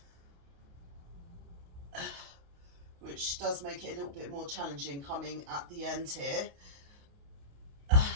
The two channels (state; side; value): late; left; 28 ms